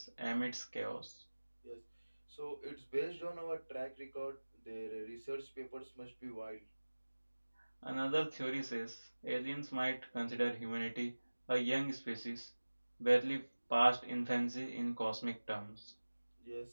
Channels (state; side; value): inverted; both; correlation -1.00